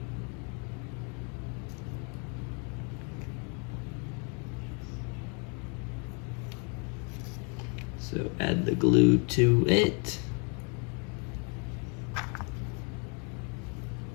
So add the glue to it.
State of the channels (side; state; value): right; quieter; 36.6 dB